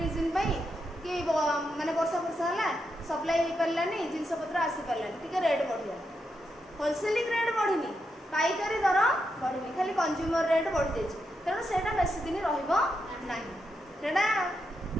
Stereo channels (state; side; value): normal; both; correlation 0.84